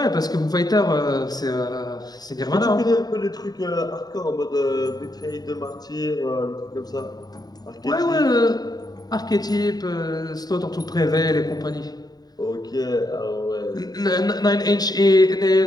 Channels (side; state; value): right; late; 0.19 ms